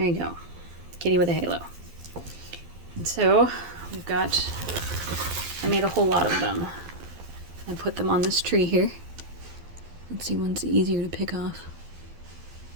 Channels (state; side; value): late; left; 12 ms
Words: you go. Kitty with a halo. And so we've got, I made a whole lot of them. I put them on this tree here. Let's see, one's easier to pick off.